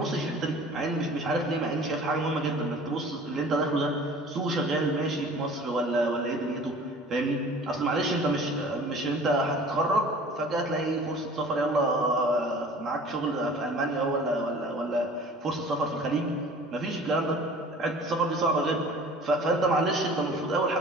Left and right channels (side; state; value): both; normal; correlation 0.46